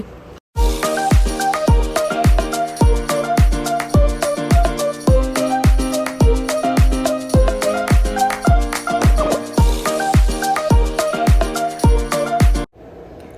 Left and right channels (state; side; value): identical; both; correlation 1.00